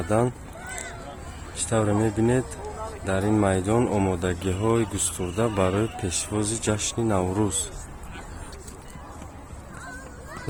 ишставре мебинед дар ин майдон омодагиҳои густурда барои пешвози ҷашни Наврӯз.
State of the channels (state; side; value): identical; both; correlation 1.00